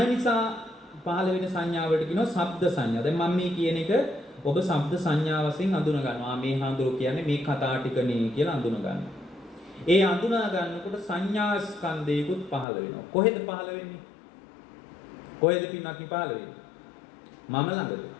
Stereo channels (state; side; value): drops out; right; at 12.7 s